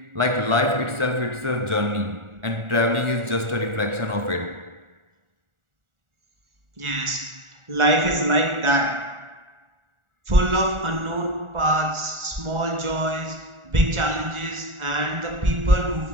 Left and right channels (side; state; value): left; late; 1.4 ms